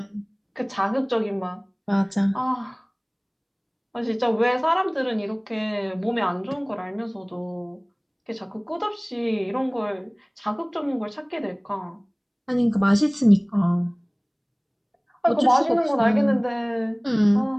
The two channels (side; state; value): both; identical; correlation 1.00